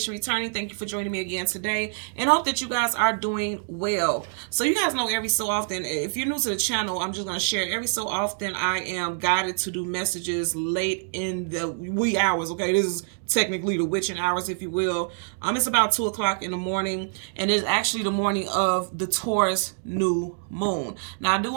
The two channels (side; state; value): left; silent; digital silence